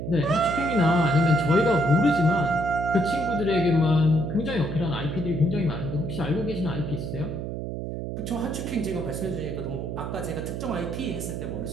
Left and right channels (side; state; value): right; noise; hum, 5 dB below the sound